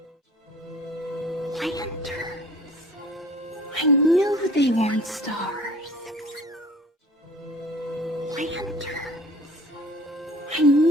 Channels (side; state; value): both; normal; correlation 0.47